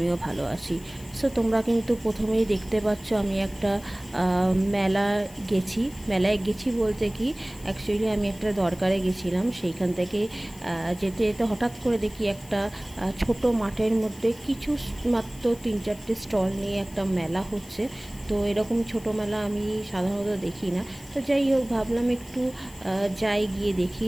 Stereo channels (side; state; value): left; noise; hiss, 21 dB below the sound